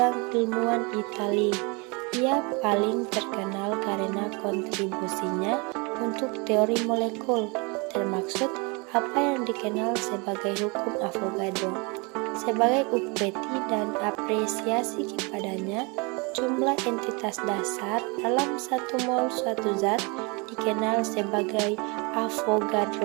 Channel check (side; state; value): left; quieter; 29.7 dB